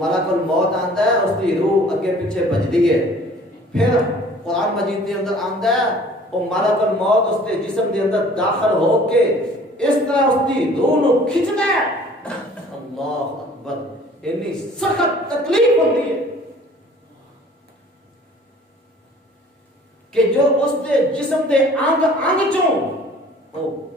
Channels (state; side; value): normal; both; correlation 0.51